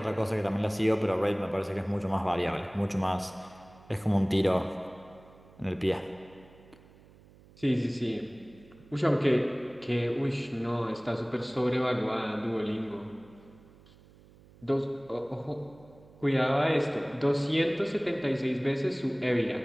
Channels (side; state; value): right; noise; hum, 25 dB below the sound